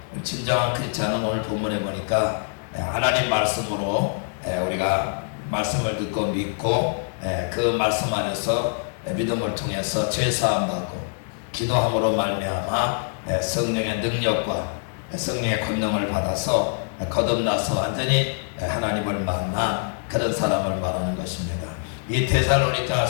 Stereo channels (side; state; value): right; silent; digital silence